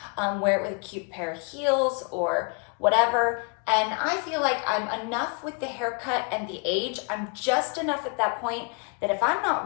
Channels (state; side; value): quieter; right; 34.8 dB